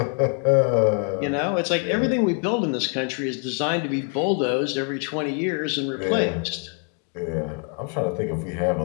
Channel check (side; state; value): right; quieter; 36.4 dB